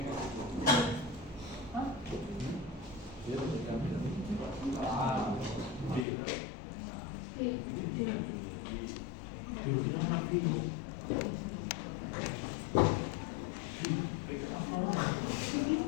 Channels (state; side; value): drops out; right; at 6.1 s